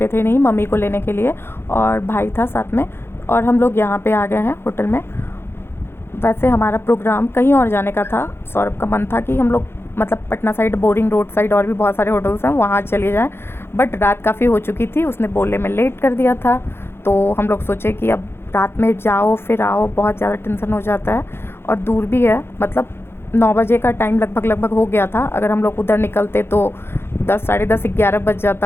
थे नहीं, मम्मी को लेने के लिए, और भाई था साथ में, और हम लोग यहाँ पे आ गए हैं होटल में। वैसे हमारा प्रोग्राम कहीं और जाने का था। सौरभ का मन था कि हम लोग मतलब Patna side, boring road side और भी बहुत सारे होटल्स हैं, वहाँ चले जाएं, बट रात काफ़ी हो चुकी थी, उसने बोलने में लेट कर दिया था। तो हम लोग सोचे कि अब रात में जाओ फिर आओ, बहुत ज़्यादा टेंशन हो जाता है, और दूर भी है। मतलब 9 बजे का टाइम लगभग हो गया था। अगर हम लोग उधर निकलते तो 10, साढ़े 10, 11 बज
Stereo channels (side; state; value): right; late; 0.11 ms